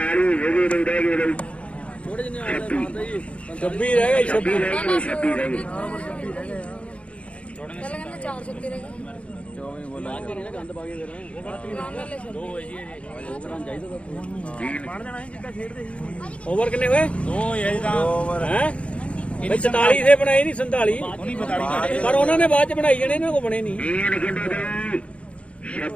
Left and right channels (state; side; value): late; right; 0.062 ms